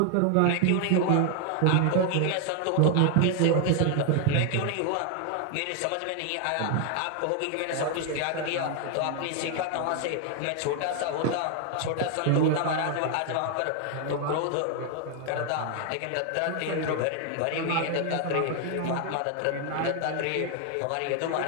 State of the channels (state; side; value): different; both; correlation 0.00